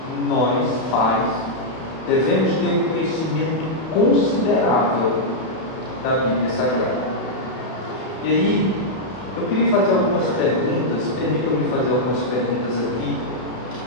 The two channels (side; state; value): right; late; 31 ms